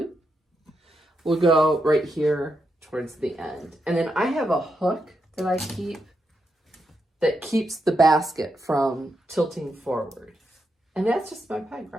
will go right here towards the end. And then I have a hook that I keep that keeps the basket from tilting forward. And that's just my peg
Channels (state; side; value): normal; both; correlation 0.84